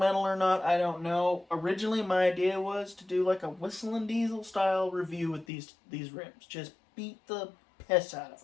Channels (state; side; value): drops out; right; at 5.5 s